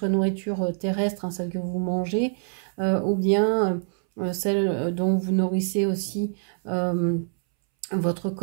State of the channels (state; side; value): silent; left; 62 dB below the other